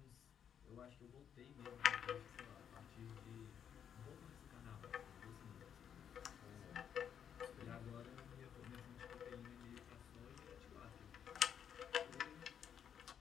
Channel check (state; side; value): quieter; right; 8.4 dB